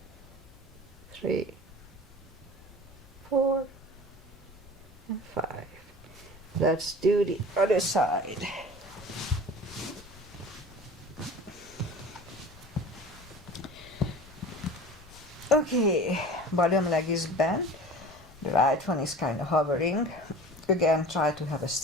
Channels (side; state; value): left; noise; rumble, 23 dB below the sound